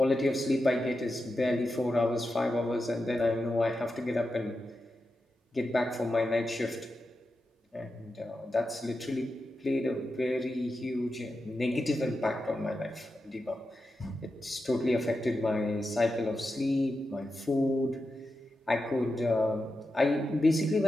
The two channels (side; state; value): both; normal; correlation 0.89